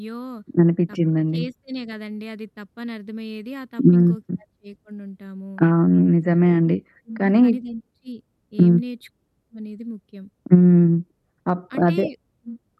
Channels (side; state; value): both; identical; correlation 1.00